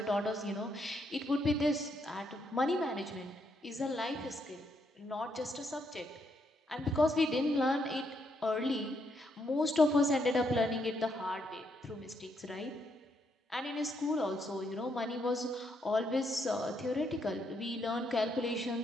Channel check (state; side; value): normal; both; correlation 0.76